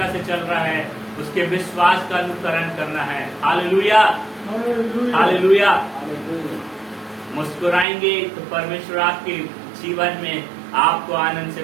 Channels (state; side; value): drops out; left; at 7.9 s